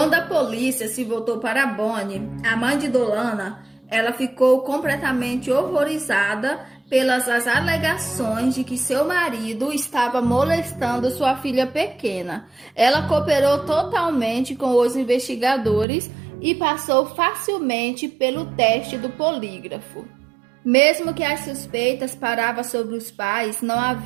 a polícia se voltou para Bonnie, a mãe de Dolana, ela ficou completamente horrorizada pelas alegações de que seu marido estava molestando sua filha pequena. Ela cooperou totalmente com os investigadores e passou facilmente pelo teste do polígrafo. Mesmo que as suspeitas paravam sobre os pais, não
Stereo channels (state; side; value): drops out; left; at 15.9 s